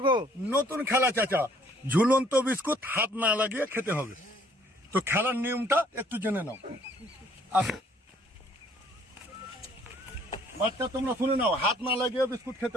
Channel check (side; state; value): both; normal; correlation 0.61